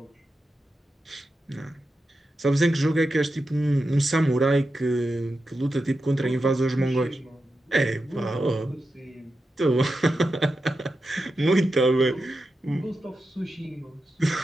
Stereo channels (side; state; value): both; normal; correlation 0.90